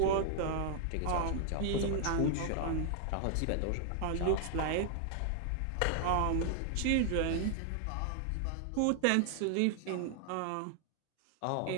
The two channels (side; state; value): both; different; correlation 0.00